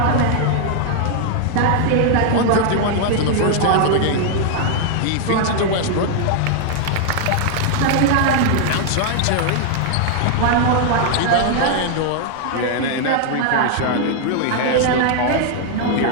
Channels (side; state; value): both; different; correlation 0.00